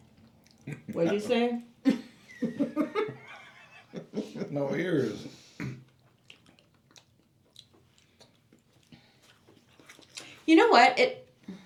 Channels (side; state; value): both; identical; correlation 1.00